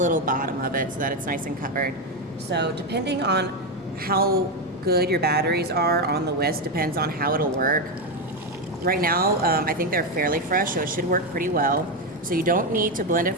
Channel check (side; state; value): both; normal; correlation 0.09